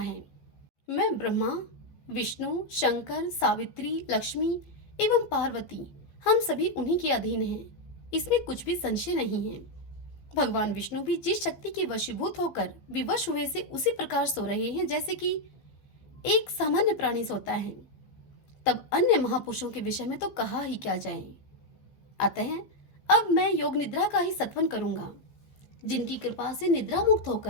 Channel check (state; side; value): late; right; 14 ms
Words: मैं ब्रह्मा, विष्णु, शंकर, सावित्री, लक्ष्मी एवं पार्वती, हम सभी उन्हीं के अधीन हैं, इसमें कुछ भी संशय नहीं है। भगवान विष्णु भी जिस शक्ति के वशीभूत होकर विवश हुए से उसी प्रकार सो रहे हैं जैसे कि एक सामान्य प्राणी सोता है। तब अन्य महापुरुषों के विषय में तो कहा ही क्या जाए। अतः अब मैं योग निद्रा का ही सत्वन करूंगा, जिनकी कृपा से निद्रा मुक्त